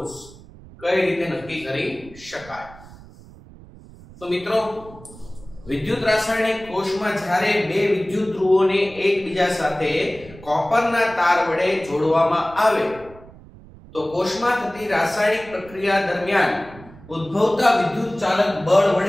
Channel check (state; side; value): noise; right; rumble, 20 dB below the sound